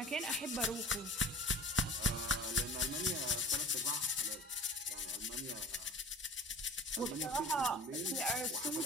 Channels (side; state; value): both; normal; correlation 0.42